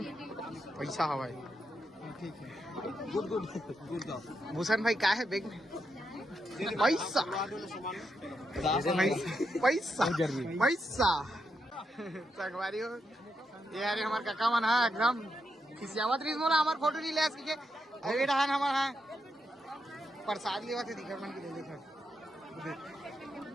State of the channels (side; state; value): both; normal; correlation 0.82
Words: पैसा हवाई गुड भूषण भाई क्या है बैग में पैसा संगवारी हो ये यार हमारे काका मन है एकदम खिसियावत रही मोला हमार फोटो नहीं ले सके अभी डहान हमार है प्रसाद लेवा थे दिखा मन की देखा